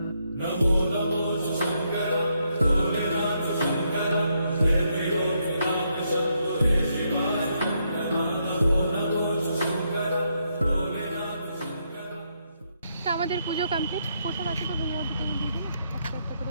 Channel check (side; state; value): both; inverted; correlation -0.77